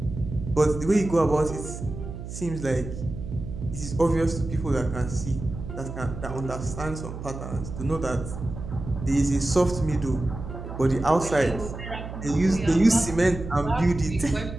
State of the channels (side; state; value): right; noise; hum, 9 dB below the sound